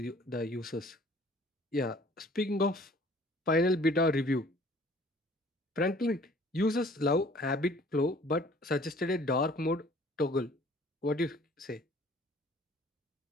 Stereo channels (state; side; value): normal; both; correlation 0.53